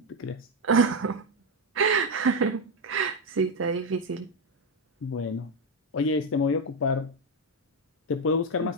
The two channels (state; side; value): normal; both; correlation 0.06